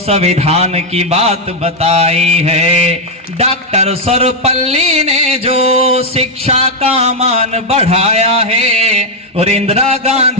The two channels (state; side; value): normal; both; correlation 0.00